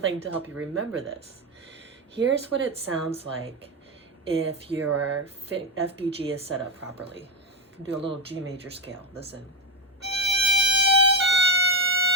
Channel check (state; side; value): normal; both; correlation 0.12